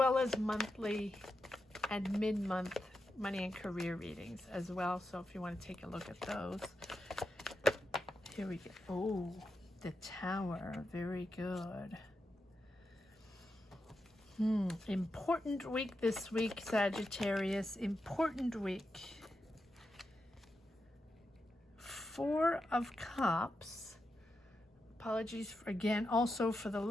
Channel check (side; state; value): both; normal; correlation 0.87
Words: as monthly and mid-month money and career readings as well. So if you want to take a look at those. Here we go. Oh, the Tower. Very good. Important week this week, Sagittarius. Important week. Four of Cups. Apologies for, again, also for the